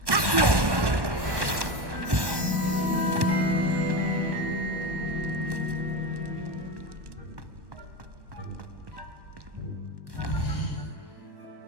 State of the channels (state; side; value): late; left; 1.1 ms